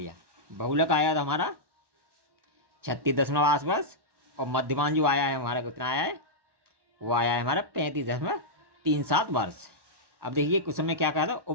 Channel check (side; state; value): left; late; 1.1 ms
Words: बहुलक आया था हमारा 36.8 वर्ष, और मध्यमान जो आया है हमारा कितना आया है, वो आया है हमारा 35.37 वर्ष। अब देखिए क्वेश्चन में क्या कहा था,